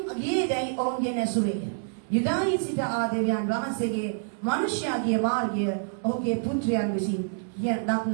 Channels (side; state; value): left; silent; 60 dB below the other